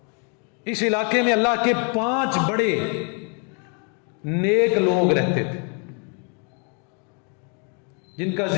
اس علاقے میں اللہ کے 5 بڑے نیک لوگ رہتے تھے جن کا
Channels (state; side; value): quieter; right; 38.1 dB